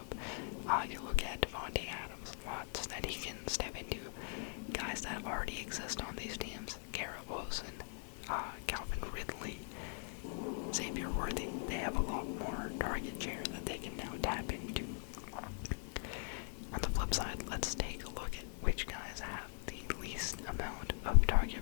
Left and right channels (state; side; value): silent; right; 50 dB below the other